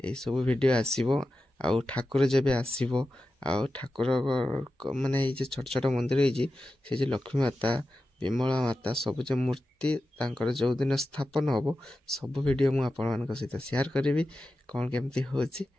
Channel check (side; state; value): both; normal; correlation 0.92